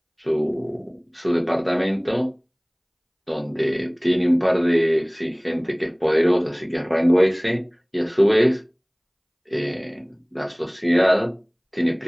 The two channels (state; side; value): identical; both; correlation 1.00